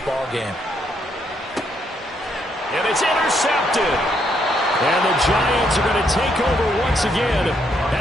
game. And it's intercepted. And the Giants are going to take over once again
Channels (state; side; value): normal; both; correlation 0.74